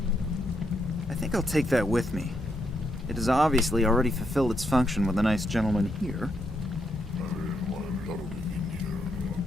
I think I'll take that with me. It has obviously already fulfilled its function with a nice gentleman here.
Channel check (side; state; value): both; normal; correlation 0.79